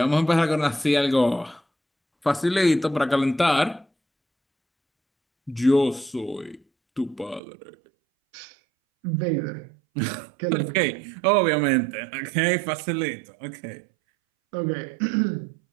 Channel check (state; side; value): drops out; left; at 7.4 s